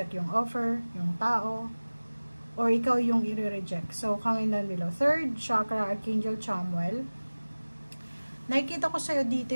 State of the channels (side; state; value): both; inverted; correlation -1.00